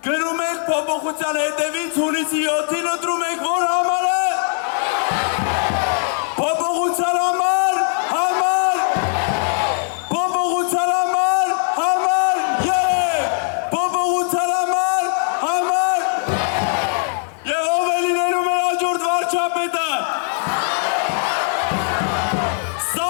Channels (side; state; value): right; silent; 56 dB below the other